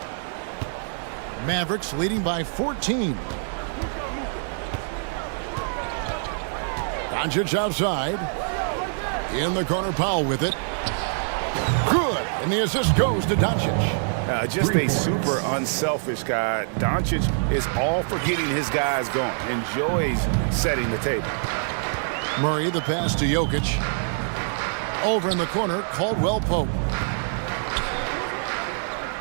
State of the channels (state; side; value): silent; left; 60 dB below the other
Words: Mavericks leading by 14. Doncic outside. In the corner, Powell with it. Good. And the assist goes to Doncic. Just a super unselfish guy. Doncic is all for getting his guys going. Enjoys setting the table. Murray, the pass to Jokic. Over in the corner, Caldwell Pope.